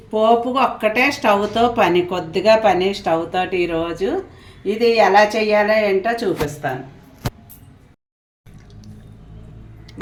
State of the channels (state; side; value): identical; both; correlation 1.00